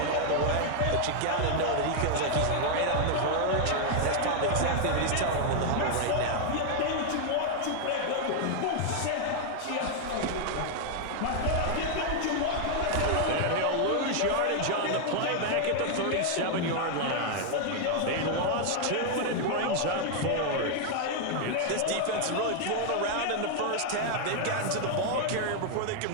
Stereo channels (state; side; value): different; both; correlation 0.00